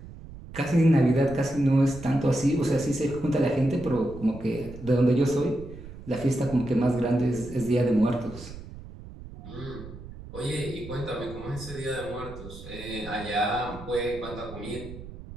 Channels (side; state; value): right; noise; rumble, 14 dB below the sound